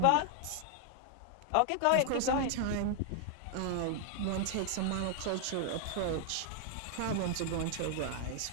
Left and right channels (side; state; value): both; different; correlation 0.00